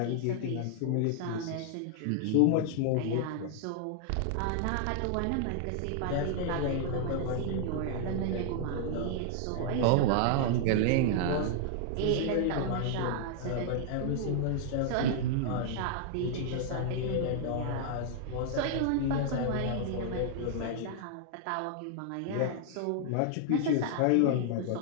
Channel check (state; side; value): different; both; correlation -0.01